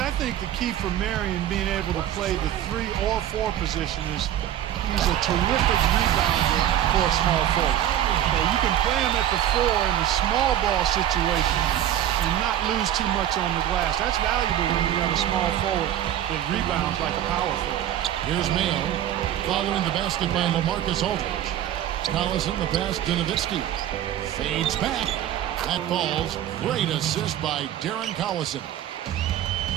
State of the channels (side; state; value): left; quieter; 11.4 dB